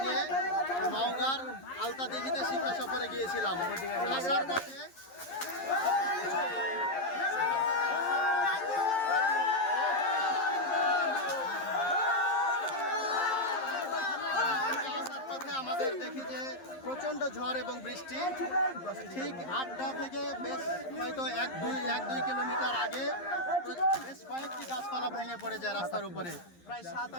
নিয়ে নওগাঁর আলতাদিঘিতে শিক্ষা সফরে গিয়েছিলাম। আসার পথে আমাদের দেখি যে প্রচণ্ড ঝড় এবং বৃষ্টি। ঠিক আড্ডা থেকে বেশ হয়তো এক দুই কিলোমিটার আগে বেশ কয়েকটি গাছপালা ভেঙে পড়ে যায় রাস্তার উপরে। প্রায়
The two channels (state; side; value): late; right; 11 ms